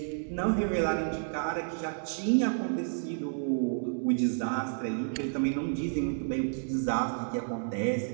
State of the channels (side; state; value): left; silent; 57 dB below the other